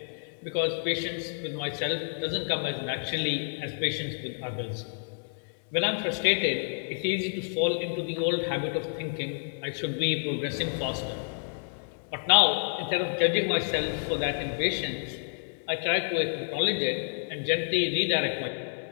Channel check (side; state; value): right; silent; digital silence